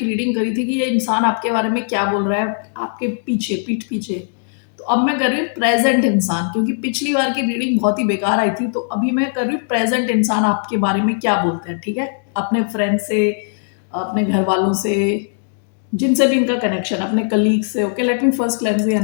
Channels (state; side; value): silent; right; digital silence